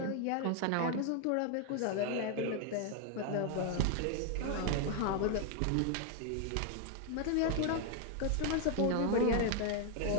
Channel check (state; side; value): different; both; correlation 0.00